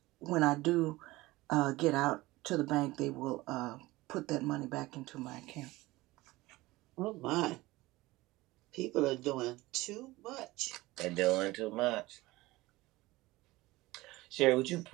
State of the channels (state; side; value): quieter; left; 19.6 dB